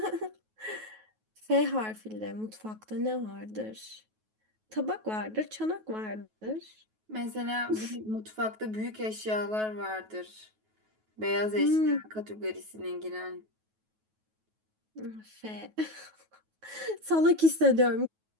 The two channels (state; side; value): late; left; 9.3 ms